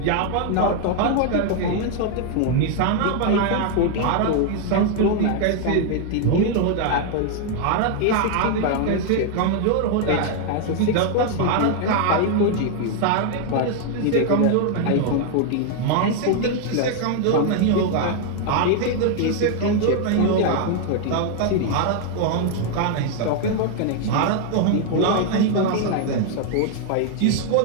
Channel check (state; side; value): different; both; correlation 0.00